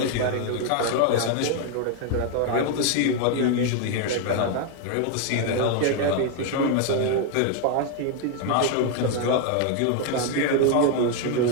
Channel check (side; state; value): both; different; correlation 0.01